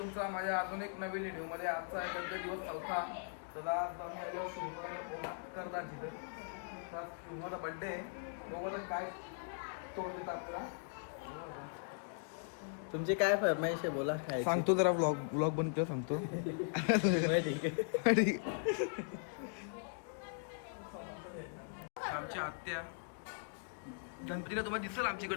माझ्या आधुनिक नवीन व्हिडिओमध्ये. आजचा गणपती दिवस 4था. तर आज आम्ही आलो ओंकारदाची. तर आज शुभमचा बड्डे आहे. बघू काय तोंड देतं आपल्याला. तुमची काय फरमाईश आहे बोला. सांगतो जरा ब्लॉग बनतो सांगतो. आमची आत्या गणपतीला तुम्हाला दिसल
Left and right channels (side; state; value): right; silent; digital silence